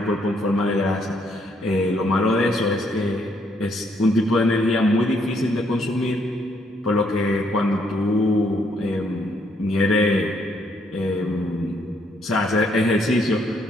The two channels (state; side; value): normal; both; correlation 0.71